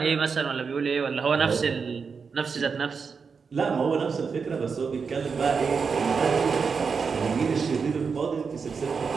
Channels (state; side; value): quieter; left; 5.5 dB